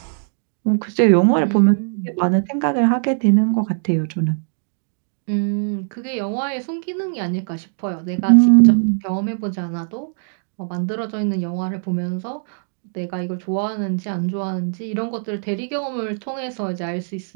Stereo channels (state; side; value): silent; left; digital silence